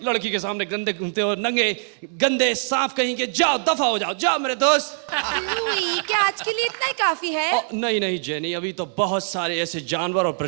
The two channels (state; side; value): silent; left; 64 dB below the other